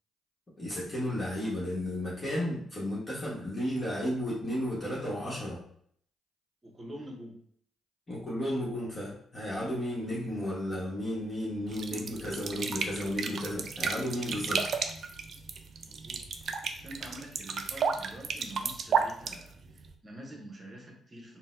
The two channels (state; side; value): normal; both; correlation 0.77